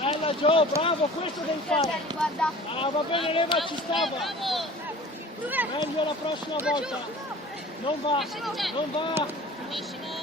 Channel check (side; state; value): both; normal; correlation 0.44